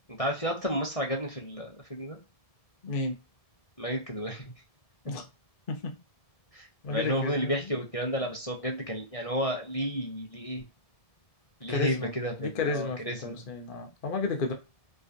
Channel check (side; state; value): right; late; 1.6 ms